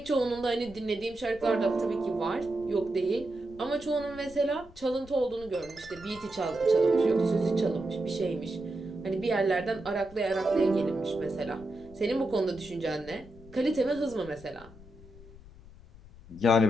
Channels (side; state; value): left; noise; rumble, 20 dB below the sound